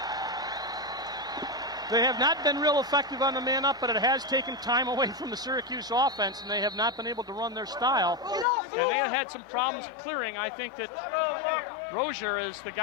They have not been real effective on the man-up, but it has taken time away from the Syracuse offense, and they have not been able to run their style. And they have had some problems clearing. I think that Rozier is the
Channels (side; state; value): right; drops out; at 8.5 s